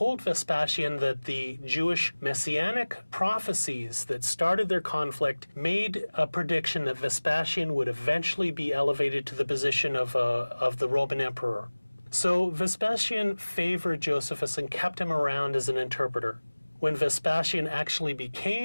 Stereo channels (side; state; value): both; inverted; correlation -1.00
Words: Vespasian that the Jewish messianic prophecies that started their conflict made a prediction that Vespasian would eventually be elevated to the position of the Roman emperor. So Vespasian favored Josephus and kept him around as an interpreter. When Vespasian actually